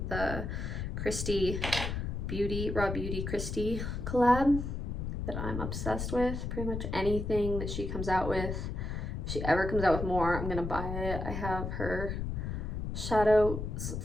the Christy Beauty, Raw Beauty Christy collab that I'm obsessed with. Pretty much anything that she comes out with, if she ever comes out with more, I'm gonna buy it. I have her shadows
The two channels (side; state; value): left; noise; rumble, 3 dB below the sound